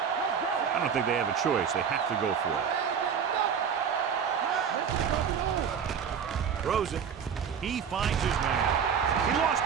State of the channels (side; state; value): left; quieter; 7.3 dB